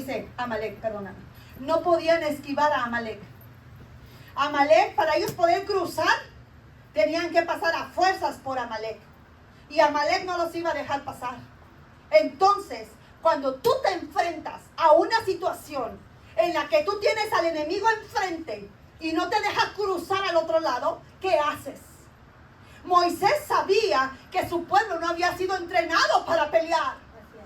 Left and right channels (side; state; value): both; identical; correlation 1.00